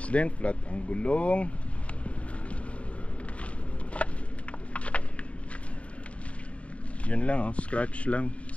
din, flat ang gulong. Yun lang oh, scratch lang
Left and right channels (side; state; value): right; late; 0.064 ms